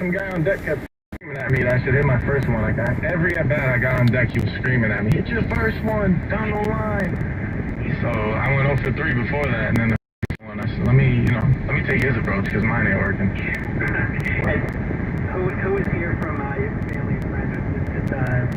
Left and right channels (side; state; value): both; identical; correlation 1.00